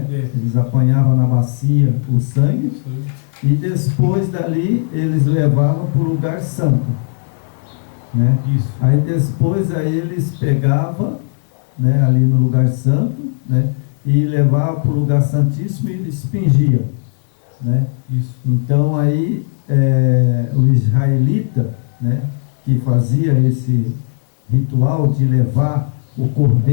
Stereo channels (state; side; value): silent; right; digital silence